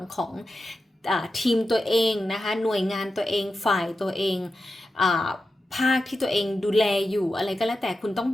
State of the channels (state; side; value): normal; both; correlation 0.91